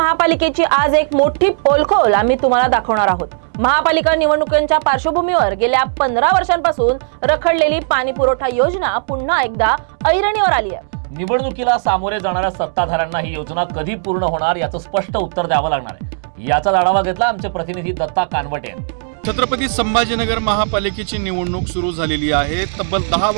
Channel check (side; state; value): left; silent; digital silence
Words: आज एक मोठी पोलखोल आम्ही तुम्हाला दाखवणार आहोत। महापालिका निवडणुकांच्या पार्श्वभूमीवर गेल्या 15 वर्षांपासून रखडलेली पाणी पुरवठा योजना पुन्हा एकदा ऐरणीवर आली आहे। निवडणुकीला सामोरे जाणाऱ्या सत्ताधाऱ्यांना ही योजना कधी पूर्ण होणार याचं स्पष्ट उत्तर द्यावं लागणार आहे। याचा आढावा घेतला आमचे प्रतिनिधी दत्ता कानवटे यांनी। छत्रपती संभाजीनगर महापालिकेची निवडणूक सुरू झालेली आहे। तब्बल 10